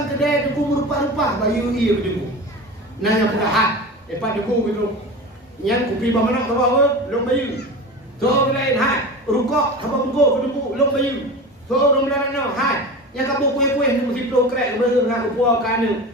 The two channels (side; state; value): both; normal; correlation 0.30